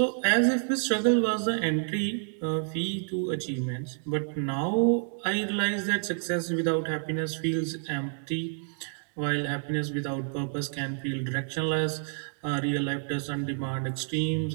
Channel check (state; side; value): silent; left; digital silence